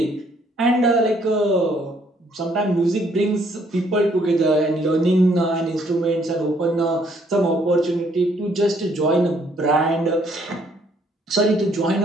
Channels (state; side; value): normal; both; correlation 0.66